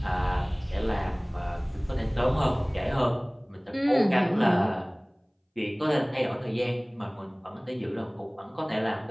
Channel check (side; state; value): both; identical; correlation 1.00